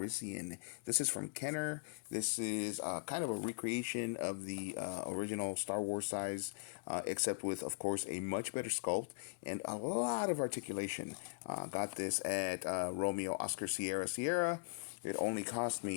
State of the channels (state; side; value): quieter; right; 36.0 dB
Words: This is from Kenner. This is kind of a recreation of the original Star Wars size, except with, of course, a much better sculpt and a lot of articulation. Got this at Romeo Oscar Sierra Sierra. It only cost